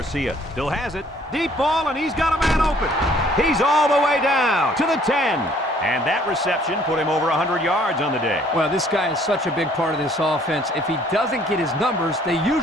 still has it. Deep ball, and he's got a man open. He's all the way down to the 10. And that reception put him over 100 yards on the day. Well, this guy is such a big part of this offense. If he doesn't get his numbers, they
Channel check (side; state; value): both; normal; correlation 0.60